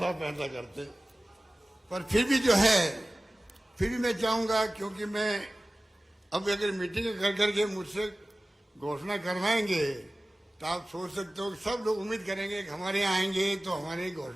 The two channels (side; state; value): both; normal; correlation 0.96